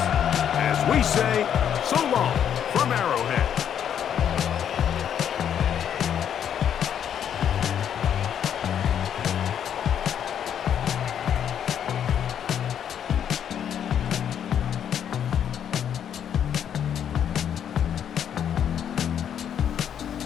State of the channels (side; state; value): right; quieter; 9.1 dB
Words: as we say so long from Arrowhead.